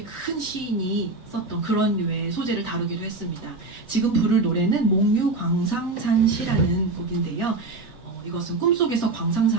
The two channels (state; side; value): quieter; left; 3.3 dB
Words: 큰 시인이 썼던 그런 류의 소재를 다루기도 했습니다. 지금 부를 노래는 몽유광상산시라는 곡인데요. 이것은 꿈속에서